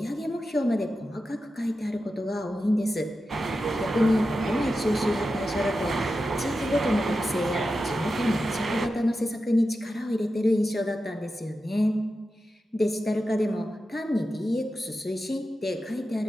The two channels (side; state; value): both; normal; correlation 0.91